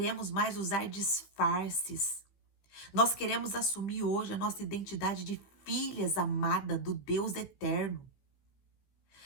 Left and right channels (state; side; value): late; right; 15 ms